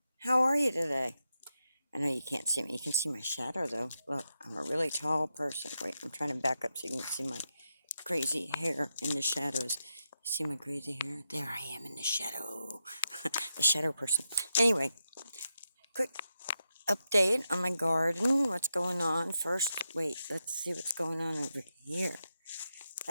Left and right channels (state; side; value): inverted; both; correlation -0.86